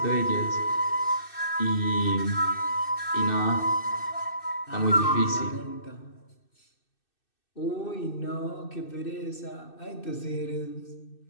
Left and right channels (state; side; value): late; right; 2.6 ms